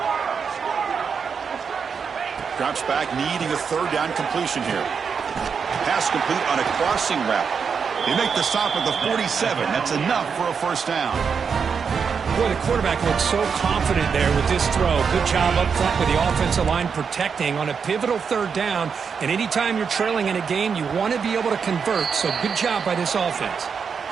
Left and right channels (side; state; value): left; quieter; 6.2 dB